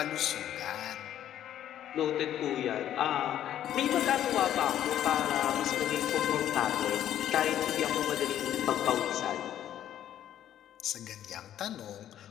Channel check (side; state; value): right; quieter; 11.3 dB